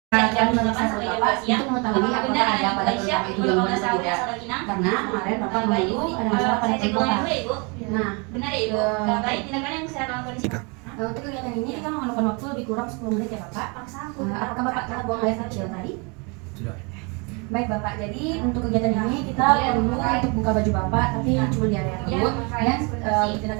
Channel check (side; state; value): left; quieter; 31.4 dB